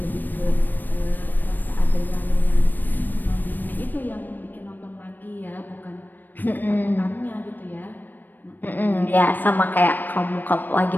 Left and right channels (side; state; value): right; late; 0.090 ms